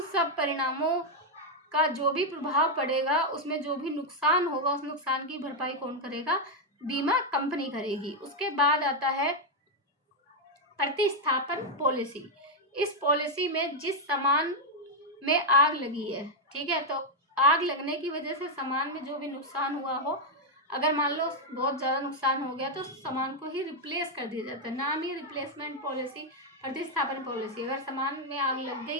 सब परिणामों का जो भी प्रभाव पड़ेगा, उसमें जो भी नुकसान होगा, उस नुकसान की भरपाई कौन करेगा, बीमा कंपनी करेगी। उसके बाद आता है प्रतिस्थापन पॉलिसी। इस पॉलिसी में जिस सामान में आग लगी है, ठीक है, तो आग लगने की वजह से सामान में जो भी नुकसान हुआ हो, अगर मान लो बहुत ज़्यादा नुकसान हो गया तो सामान को ही रिप्लेस कर दिया जाता है। नाम ही रिप्लेसमेंट पॉलिसी, प्रतिस्थापन पॉलिसी। अगर सामान में आग लग गई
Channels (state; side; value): normal; both; correlation 0.00